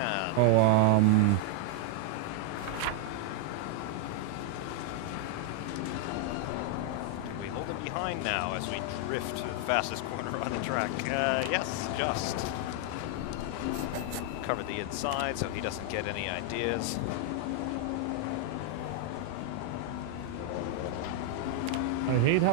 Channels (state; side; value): different; both; correlation 0.00